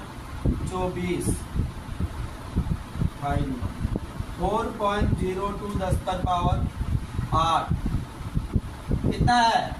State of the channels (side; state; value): both; identical; correlation 1.00